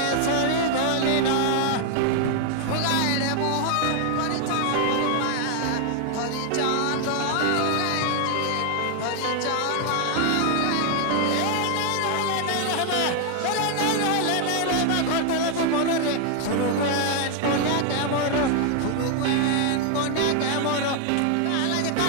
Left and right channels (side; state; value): both; different; correlation 0.00